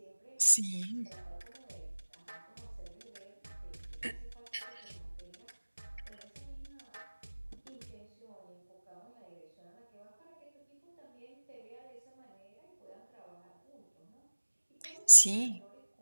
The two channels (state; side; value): inverted; both; correlation -1.00